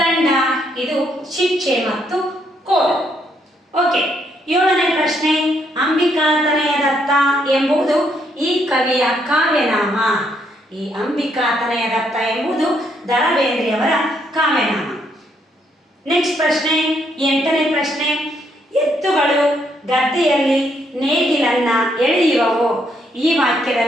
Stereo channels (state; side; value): normal; both; correlation 0.73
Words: ಇದು ಶಿಕ್ಷೆ ಮತ್ತು ಕೋಲು. ಓಕೆ, ಏಳನೇ ಪ್ರಶ್ನೆ, ಅಂಬಿಕಾ ತನಯದತ್ತ ಎಂಬುದು ಈ ಕವಿಯ ಕಾವ್ಯನಾಮ. ಈ ಅಂಬಿಕಾ ತನಯದತ್ತ ಎಂಬುದು ದ ರಾ ಬೇಂದ್ರೆಯವರ ಕಾವ್ಯನಾಮ. ನೆಕ್ಸ್ಟ್ ಪ್ರಶ್ನೆ, ಎಂಟನೇ ಪ್ರಶ್ನೆ, ಎತ್ತುಗಳು ಗದ್ದೆಯಲ್ಲಿ ನೇಗಿಲನ್ನ ಎಳೆಯುವವು ಈ